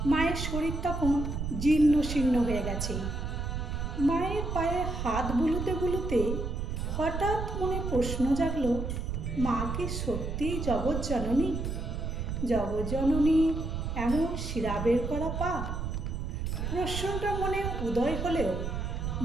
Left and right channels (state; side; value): noise; right; rumble, 3 dB below the sound